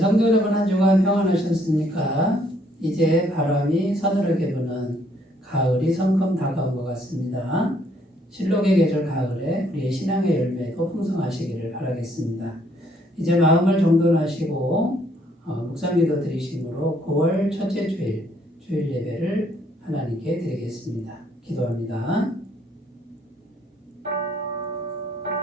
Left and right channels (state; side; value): normal; both; correlation 0.67